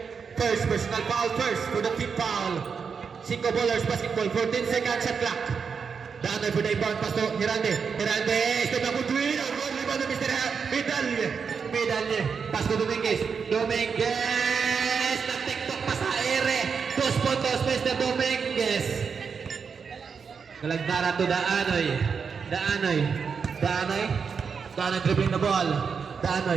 first personal foul first for the team foul. 5 ballers basketball, 14 seconds shot clock. Daan for the inbound pass to Hirande. Step up to win. Good rebound to Mr. Medalye. Pass to Dominguez. Nag-tiktok pa sa ere. 2 puntos, Mr. Dominguez. Galagdara to Daanoy. Daanoy dribbling the ball.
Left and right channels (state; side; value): quieter; left; 6.0 dB